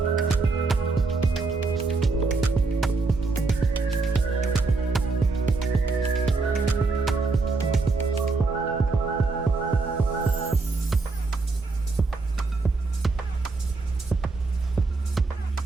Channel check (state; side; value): quieter; left; 3.8 dB